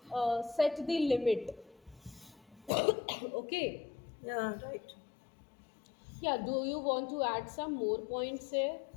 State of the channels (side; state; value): right; drops out; at 2.7 s